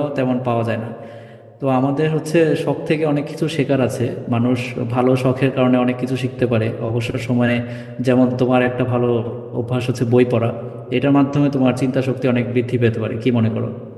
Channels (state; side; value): identical; both; correlation 1.00